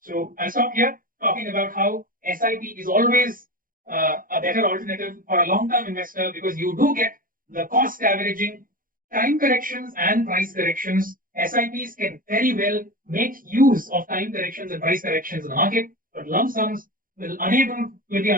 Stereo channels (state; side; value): late; left; 0.40 ms